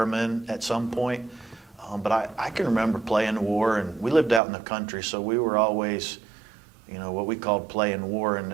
at some point. But I can remember playing war, and we lived out in the country, so we were always, what we called playing war.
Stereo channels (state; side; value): drops out; left; at 4.4 s